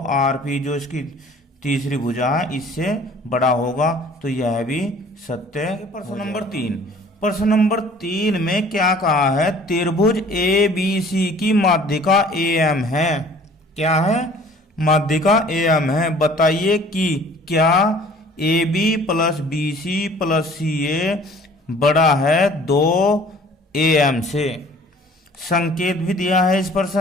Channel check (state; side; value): normal; both; correlation 0.51